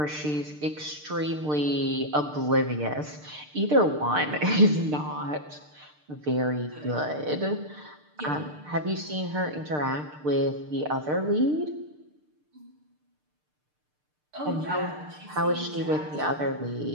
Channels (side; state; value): left; late; 6.7 ms